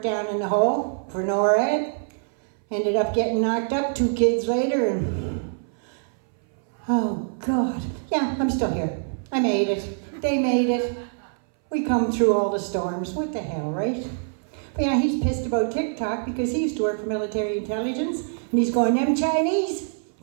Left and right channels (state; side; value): silent; left; 61 dB below the other